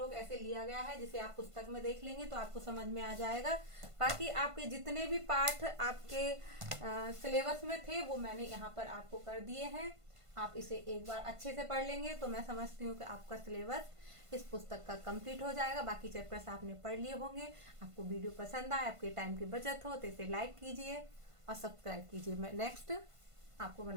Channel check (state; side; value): late; left; 1.5 ms